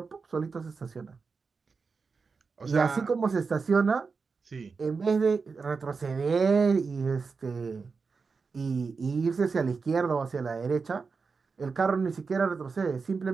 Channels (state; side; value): quieter; left; 4.9 dB